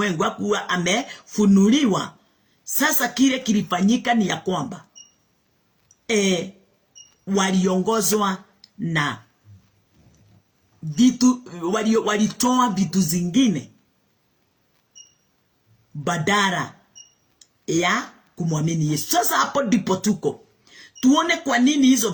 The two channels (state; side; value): identical; both; correlation 1.00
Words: hakuwa amefunuliwa, sasa kile kilifanyika ni ya kwamba waliongozwa na vitu, walitoa vitu zingine badala ya kumwamini Yesu. Sasa hapo ndipo tuko tuone kwa nini hizo